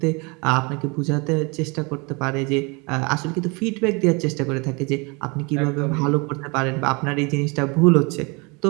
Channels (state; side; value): quieter; left; 29.2 dB